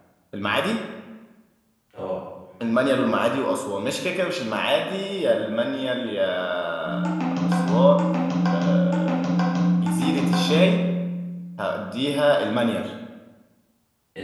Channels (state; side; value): identical; both; correlation 1.00